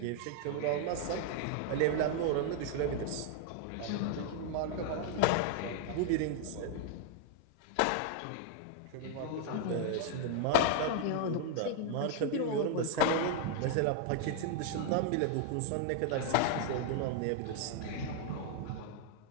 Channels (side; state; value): both; different; correlation 0.01